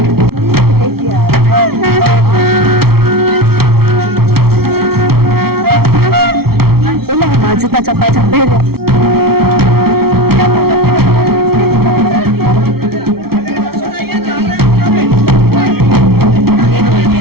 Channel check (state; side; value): late; left; 0.94 ms